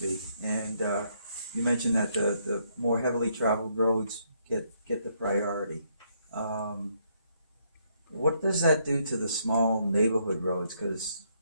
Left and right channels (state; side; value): inverted; both; correlation -0.73